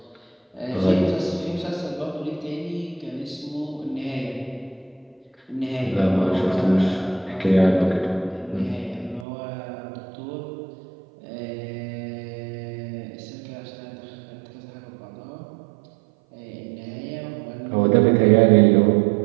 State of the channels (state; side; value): drops out; left; at 9.2 s